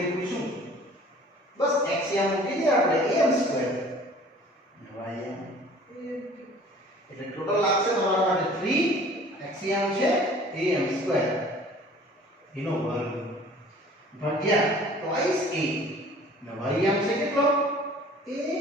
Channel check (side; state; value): both; normal; correlation 0.49